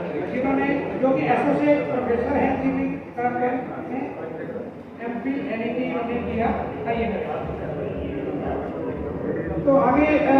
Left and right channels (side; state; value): both; identical; correlation 1.00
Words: जिन्होंने जो कि एसोसिएट प्रोफेसर हैं इंजीनियरिंग में MP NET इन्होंने किया। आइए तो आगे